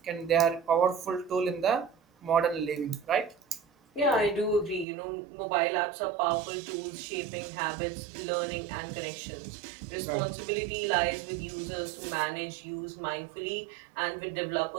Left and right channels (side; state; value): left; drops out; at 4.9 s